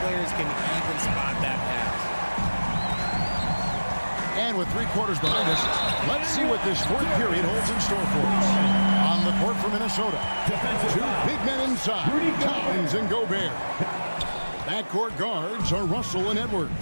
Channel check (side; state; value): both; inverted; correlation -1.00